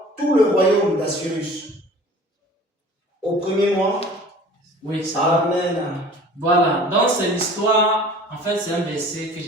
tout le royaume d'Assyrus. Au premier mois. Oui, ça. Amen. Voilà, donc c'est l'histoire, en fait c'est un verset que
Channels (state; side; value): normal; both; correlation 0.45